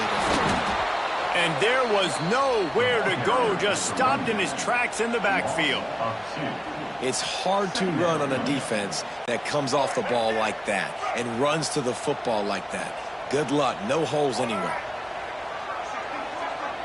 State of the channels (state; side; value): identical; both; correlation 1.00